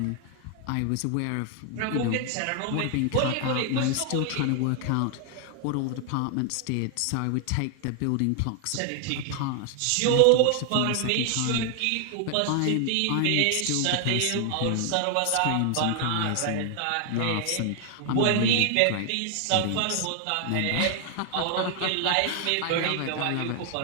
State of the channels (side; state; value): both; different; correlation 0.00